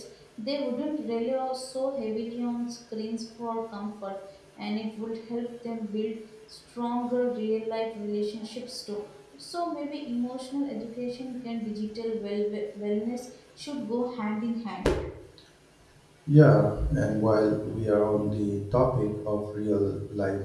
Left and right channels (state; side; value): identical; both; correlation 1.00